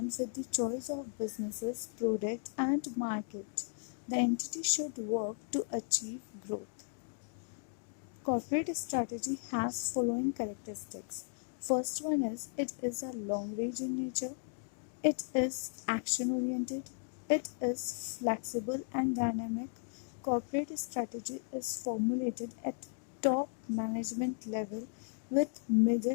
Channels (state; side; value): silent; right; digital silence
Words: with the choice of businesses, product, and market. The entity should work to achieve growth. Corporate strategy has following characteristics. First one is it is a long range in nature, it is action oriented, it is flexible and dynamic. Corporate strategy is formulated at top management level with